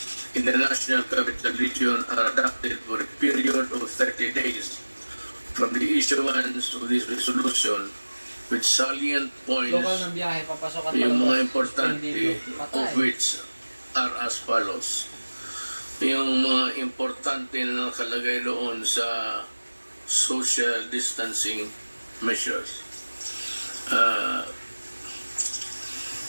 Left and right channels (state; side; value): inverted; both; correlation -1.00